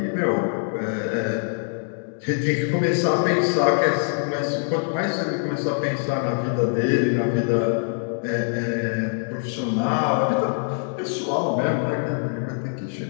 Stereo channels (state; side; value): silent; right; digital silence